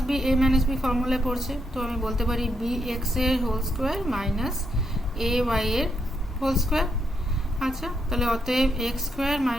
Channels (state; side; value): normal; both; correlation 0.79